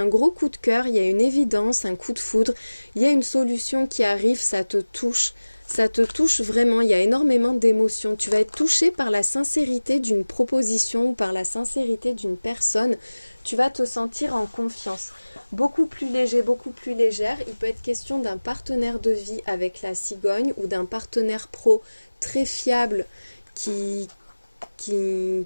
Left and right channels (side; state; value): both; inverted; correlation -1.00